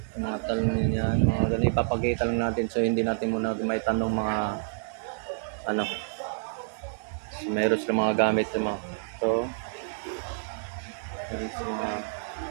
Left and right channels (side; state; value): left; silent; digital silence